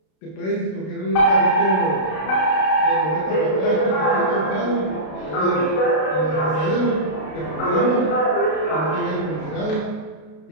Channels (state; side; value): late; right; 32 ms